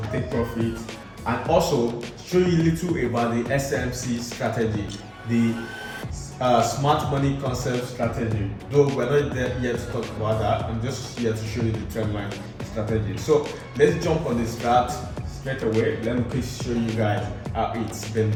take profit, and also show you a little about the SMC strategy, the smart money concept strategy. Though we're not there yet to talk about that, I'm just here to show you the trendline strategy. So let's jump on this strat straight away. Let me please show you guys how it's been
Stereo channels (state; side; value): identical; both; correlation 1.00